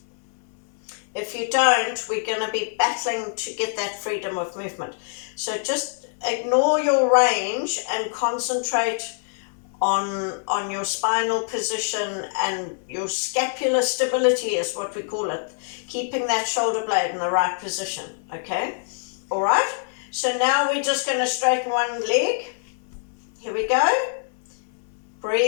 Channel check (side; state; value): right; silent; 59 dB below the other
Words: If you don't, we're going to be battling to get that freedom of movement. So just ignore your range and concentrate on your spinal position and your scapular stability is what we call it. Keeping that shoulder blade in the right position, okay? All right? So now we're just going to straighten one leg. Here we go.